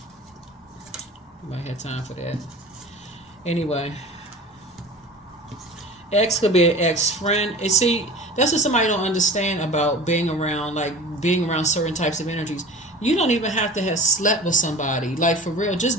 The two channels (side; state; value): both; normal; correlation 0.38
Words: might have time for that. Anyway, ex could be an ex-friend. And see, that's what somebody don't understand about being around, like, being around certain types of energies. You don't even have to have slept with somebody. Like, for real,